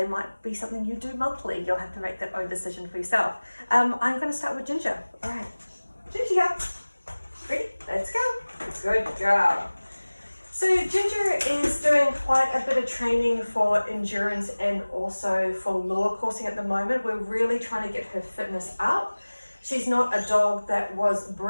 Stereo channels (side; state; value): both; inverted; correlation -1.00